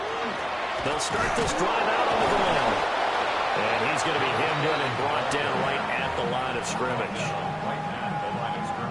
They'll start this drive out on the ground. And he's going to be hemmed in and brought down right at the line of scrimmage.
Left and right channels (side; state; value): both; identical; correlation 1.00